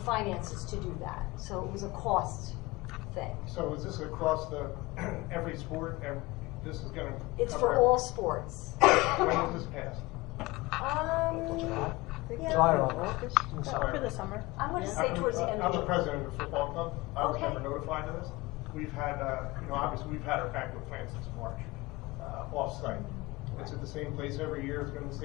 finances to do that. So it was a cost thing. So is this across every sport? This is going to. It's for all sports. When was this passed? July or August? Over the summer. I'm going to say towards the end I'm of the president of the football club. I was Okay. never notified of this. We've had, obviously we've had our banquet planned since March, off-site. It's at the same place every year. It's been in the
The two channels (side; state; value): right; quieter; 21.9 dB